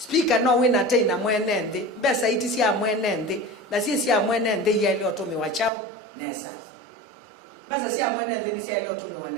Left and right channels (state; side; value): drops out; left; at 5.7 s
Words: no wina teina mwene nthi mbesa iti sia mwene nthi na sia mwene nthi yele otumi wa chao nesa basa sia mwene nthi ni sia yele otumi wa